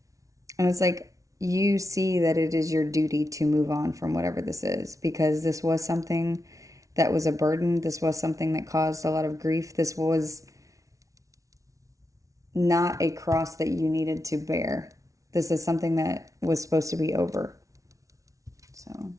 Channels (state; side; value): late; left; 0.16 ms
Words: it's like you see that it is your duty to move on from whatever this is, because this was something that was a burden. This was something that caused a lot of grief. This was not a cross that you needed to bear. This is something that was supposed to be over. So